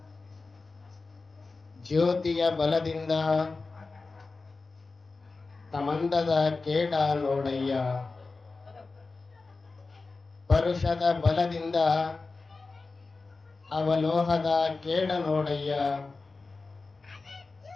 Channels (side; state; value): right; quieter; 3.9 dB